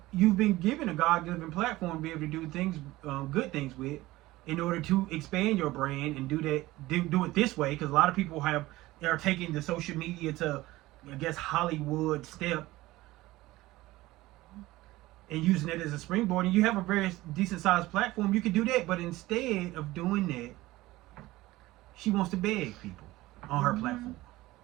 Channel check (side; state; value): left; quieter; 18.2 dB